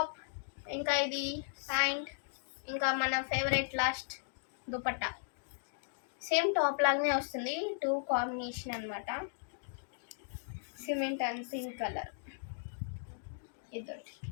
ఇంకా ఇది ప్యాంట్, ఇంకా మన favourite last dupatta. Same top లాగానే వస్తుంది, టూ కాంబినేషన్ అనమాట. Cement and pink colour. ఇది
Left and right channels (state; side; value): silent; right; digital silence